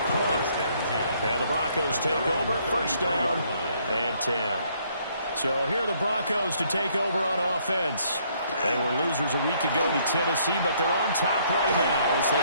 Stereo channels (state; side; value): inverted; both; correlation -0.67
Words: punt. And the Broncos take over, first down and 10. So here are the Broncos to take over on offense. They were losers a week ago to Tennessee, but they're on top right now as